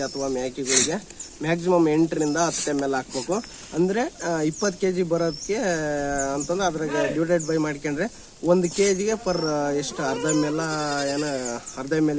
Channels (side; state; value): both; identical; correlation 1.00